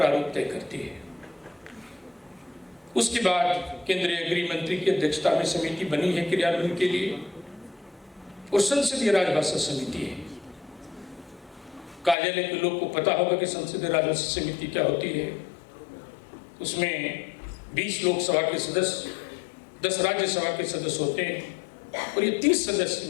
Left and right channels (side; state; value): right; drops out; at 12.2 s